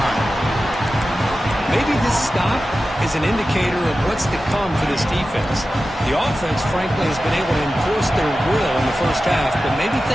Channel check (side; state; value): both; normal; correlation 0.94